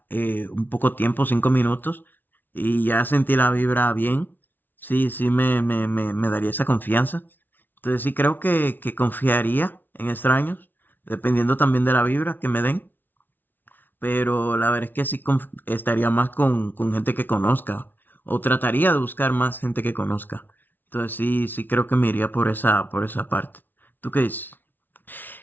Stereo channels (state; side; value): late; right; 0.090 ms